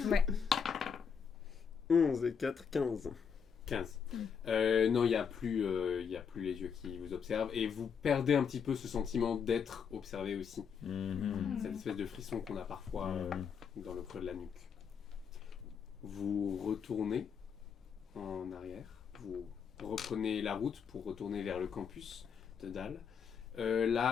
Ouais. 11 et 4, 15. 15. Non, il n'y a plus les yeux qui vous observent et vous perdez un petit peu ce sentiment d'être observé aussi. Cette espèce de frisson qu'on a parfois dans le creux de la nuque. Vous retournez en arrière, vous reprenez la route pour retourner vers le campus de Dalle.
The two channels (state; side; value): quieter; right; 6.7 dB